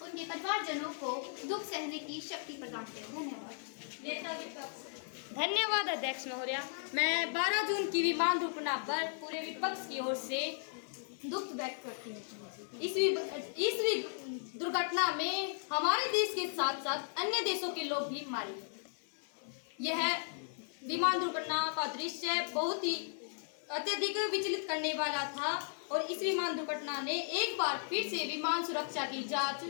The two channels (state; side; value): silent; right; digital silence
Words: उनके परिवारजनों को दुख सहने की शक्ति प्रदान करे। धन्यवाद। धन्यवाद अध्यक्ष महोदय। मैं 12 जून की विमान दुर्घटना पर पूरे विपक्ष की ओर से दुख व्यक्त करती हूँ। इस दुर्घटना में हमारे देश के साथ साथ अन्य देशों के लोग भी मारे गए। यह विमान दुर्घटना का दृश्य बहुत ही अत्यधिक विचलित करने वाला था और इस विमान दुर्घटना ने एक बार फिर से विमान सुरक्षा की जांच